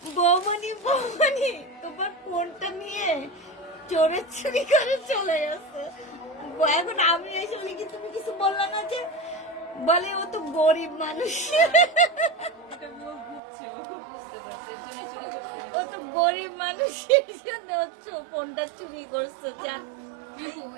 বৌমনি বৌমনি তোমার ফোনটা নিয়ে চোরে চুরি করে চলে গেছে। এখন আমি এসে বলি কি তুমি কিছু বললে না যে, বলে ও তো গরিব মানুষ, ও তো গরিব মানুষ, এই জন্য হচ্ছে ও ফোনটা চুরি করছে। যা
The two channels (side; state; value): left; drops out; at 13.4 s